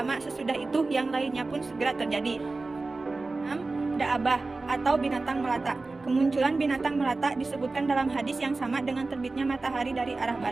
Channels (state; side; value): quieter; left; 3.5 dB